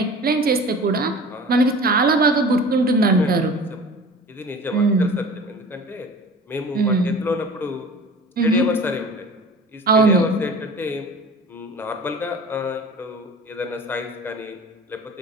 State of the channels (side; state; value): both; normal; correlation 0.40